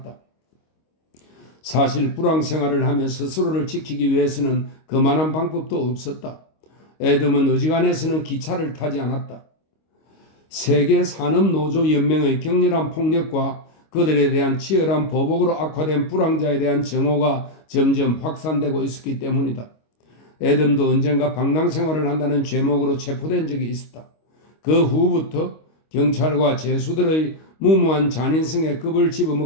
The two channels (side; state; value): right; late; 25 ms